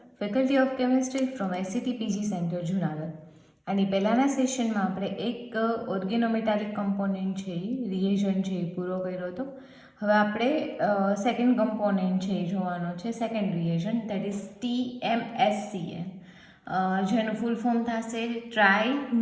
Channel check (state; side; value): identical; both; correlation 1.00